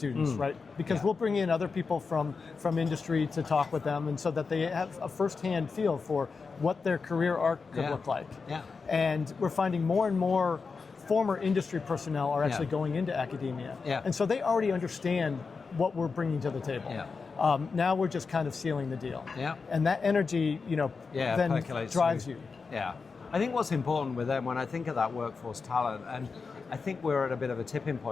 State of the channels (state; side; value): quieter; right; 4.8 dB